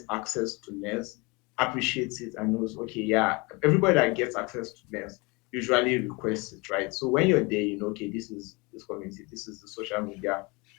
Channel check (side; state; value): right; quieter; 27.1 dB